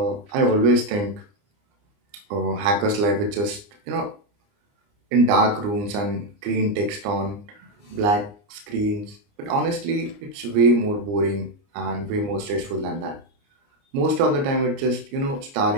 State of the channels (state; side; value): late; left; 29 ms